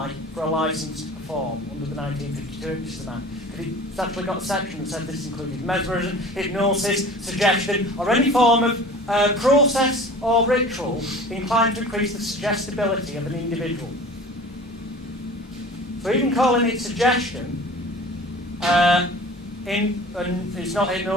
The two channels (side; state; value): both; normal; correlation 0.42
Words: for a licence to perform under the 1952 Hypnotism Act. It's actually got a section that said this included mesmerism, hypnosis, suggestion, or any form of process or ritual inclined to increase the suggestibility of an individual. So even calling it suggestion, and it's not